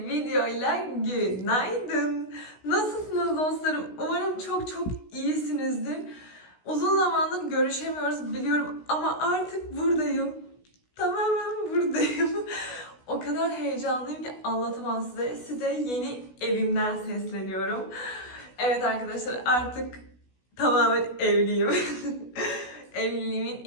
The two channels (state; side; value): late; right; 16 ms